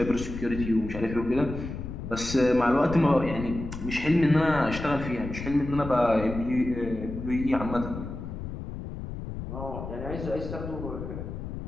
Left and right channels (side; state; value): left; noise; rumble, 8 dB below the sound